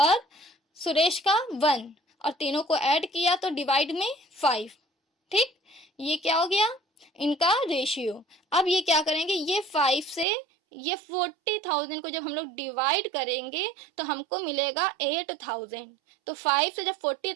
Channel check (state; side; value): drops out; left; at 10.2 s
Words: सुरेश का 1, और तीनों को ऐड किया तो डिवाइड में 5। ठीक, ये क्या हो गया, इनका रेशियो। अब ये क्या करेंगे, ये 5 से ये 40,000 को जब हम लोग डिवाइड करेंगे तो हमको मिलेगा 8,000। तो 5 से जब